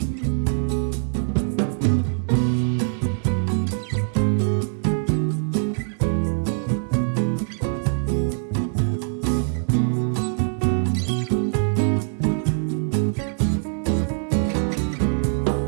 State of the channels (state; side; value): silent; left; 63 dB below the other